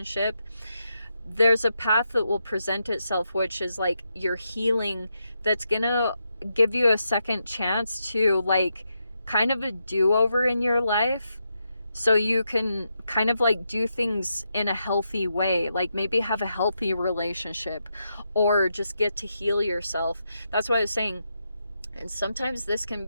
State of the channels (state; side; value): inverted; both; correlation -0.84